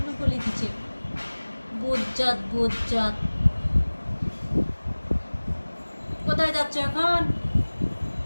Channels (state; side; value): inverted; both; correlation -1.00